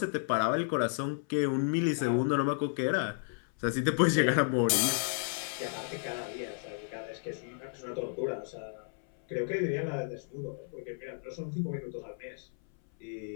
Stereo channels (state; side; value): silent; right; 56 dB below the other